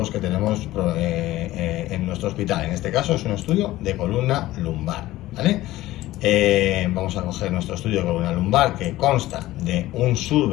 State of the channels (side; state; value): right; quieter; 16.4 dB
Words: que tenemos en nuestro hospital. En este caso es un estudio de columna lumbar, ¿vale? Vamos a coger nuestro estudio de columna lumbar, que consta de un